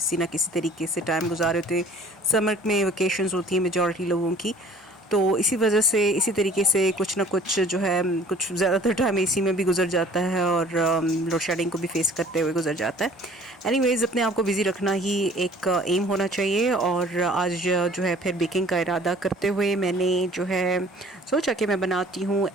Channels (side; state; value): both; normal; correlation 0.51